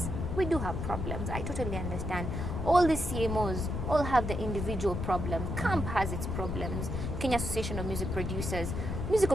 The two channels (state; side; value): noise; left; rumble, 3 dB below the sound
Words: we do have problems. I totally understand. All the CMOs all have the individual problems. CAMP has its problems. Kenya Association of Music Producers. Music